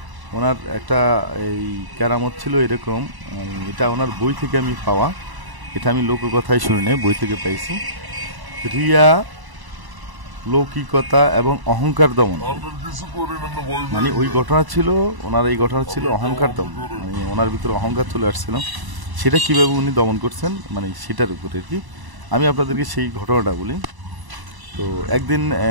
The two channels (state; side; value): late; left; 1.0 ms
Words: ওনার একটা এই কেরামত ছিল এরকম, এটা ওনার বই থেকে আমি পাওয়া, এটা আমি লোককথায় শুনি নাই, বই থেকে পাইছি। রিয়া, লৌকিকতা এবং অহংকার দমন, ওই ঘটনা ছিল ওনার, এই ঘটনা ছিল অহংকার দমন। ওনার ভিতরে অহংকার চলে আসছিল, সেটা কিভাবে উনি দমন করছেন সেটার উপরে আর কি। আমি আপনাদেরকে সেই ঘটনাটা বলি। তো একদিন